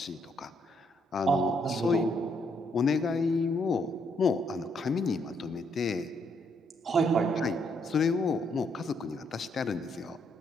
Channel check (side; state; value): both; normal; correlation 0.73